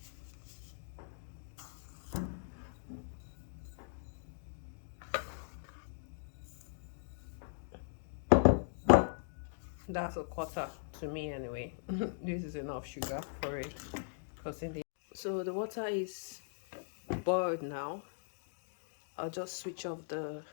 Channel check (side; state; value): right; silent; digital silence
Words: That's a quarter to me anyway. This is enough sugar for it, because so the water is boiled now. I'll just switch off the